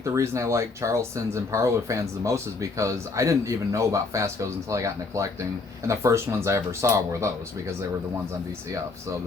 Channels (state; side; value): quieter; right; 3.9 dB